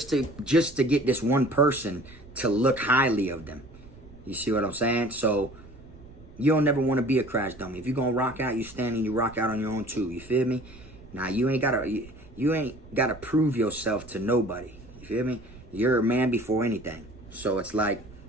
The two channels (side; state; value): right; noise; rumble, 20 dB below the sound